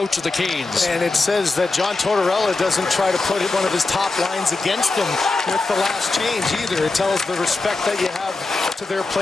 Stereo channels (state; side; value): quieter; right; 3.5 dB